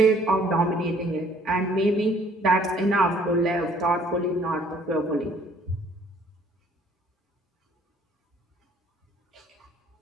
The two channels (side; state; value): both; normal; correlation 0.59